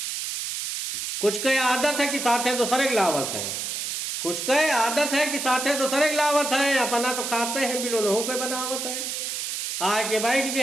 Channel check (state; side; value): noise; right; hiss, 4 dB below the sound